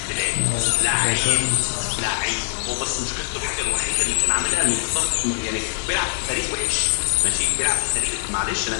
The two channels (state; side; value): silent; right; digital silence